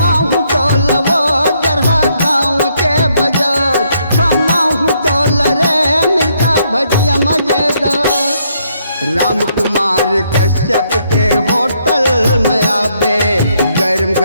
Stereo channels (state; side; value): inverted; both; correlation -0.73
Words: तो लवो जरहा गाँव के बाजार खमाऊं तो रे मिर्चा भजिया मजेदार। राम कुमार कश्यप के होटल में आवे गरम